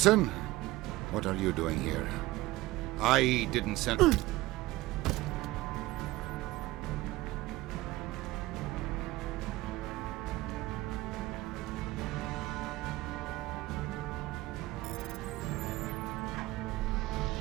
what are you doing here? I didn't send...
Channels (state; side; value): quieter; left; 18.4 dB